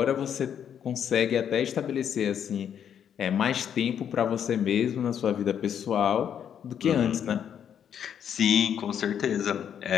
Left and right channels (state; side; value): quieter; right; 8.8 dB